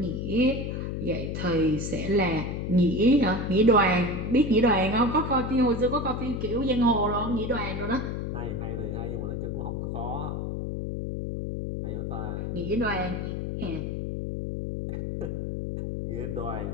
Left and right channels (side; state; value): left; noise; hum, 3 dB below the sound